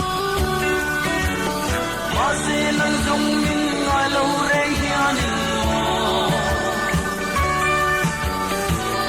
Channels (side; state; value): both; identical; correlation 1.00